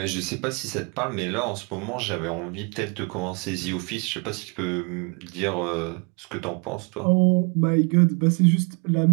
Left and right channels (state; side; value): quieter; left; 33.2 dB